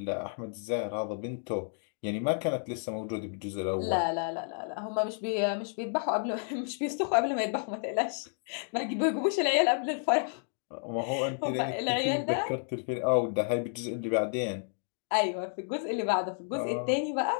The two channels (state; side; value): silent; right; 57 dB below the other